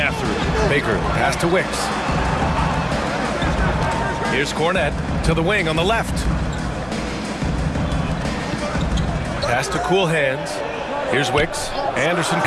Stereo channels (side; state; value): both; identical; correlation 1.00